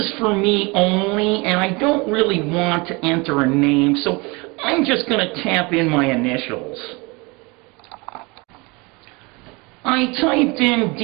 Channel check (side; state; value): left; quieter; 26.6 dB